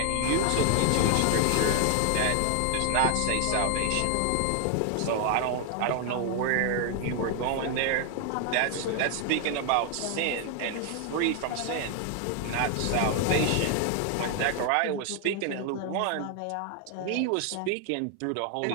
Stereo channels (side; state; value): both; different; correlation 0.00